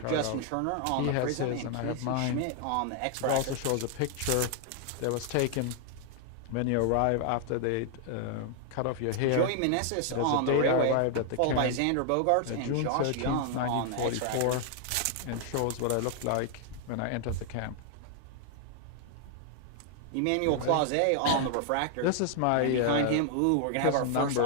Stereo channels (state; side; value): different; both; correlation 0.00